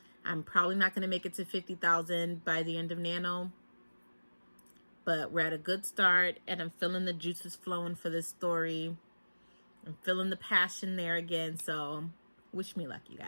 I'm probably not gonna make it to 50,000 by the end of Nano, but we're at a good start, and I'm feeling the juices flowing for this story. I'm feeling the passion there again. So wish me luck, you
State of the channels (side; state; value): both; inverted; correlation -1.00